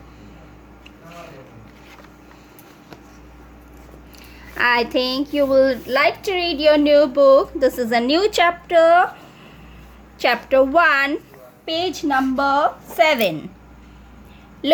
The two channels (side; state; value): both; identical; correlation 1.00